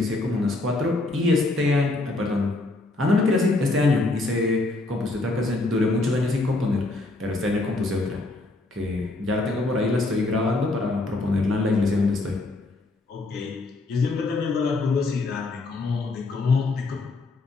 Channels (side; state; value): right; quieter; 3.0 dB